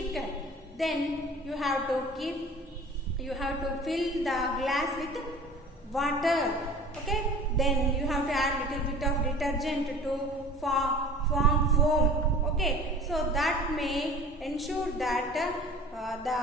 Then you have to fill the glass with water. Okay, then you have to add little bit of detergent to form foam. Okay, so that may ensure that the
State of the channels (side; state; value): both; normal; correlation 0.43